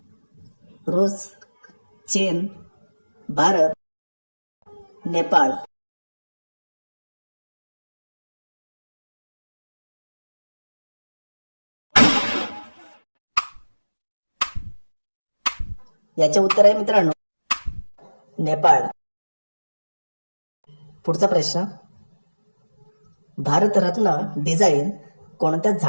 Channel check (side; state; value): both; inverted; correlation -1.00